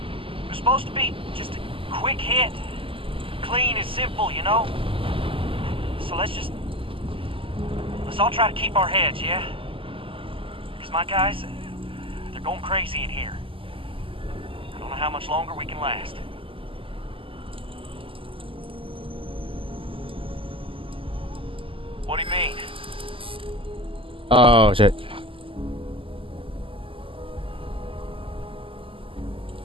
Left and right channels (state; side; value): late; left; 0.26 ms